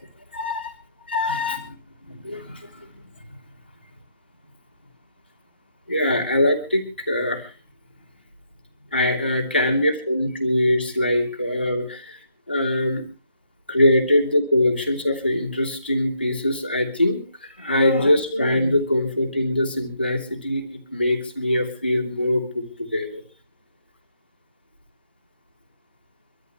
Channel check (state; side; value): inverted; both; correlation -0.74